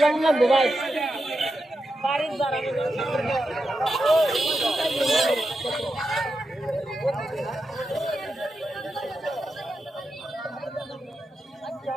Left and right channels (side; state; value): both; normal; correlation 0.88